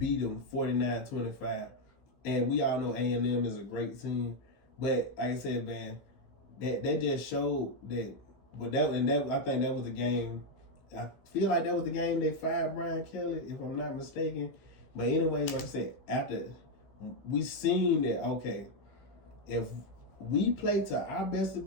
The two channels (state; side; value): late; right; 15 ms